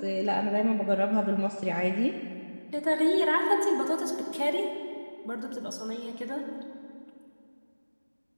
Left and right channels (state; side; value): inverted; both; correlation -1.00